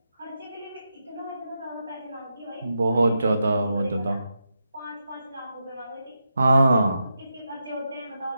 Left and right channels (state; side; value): inverted; both; correlation -0.86